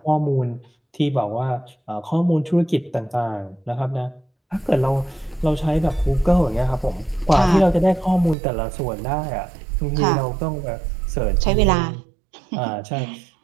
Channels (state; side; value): drops out; left; at 8.3 s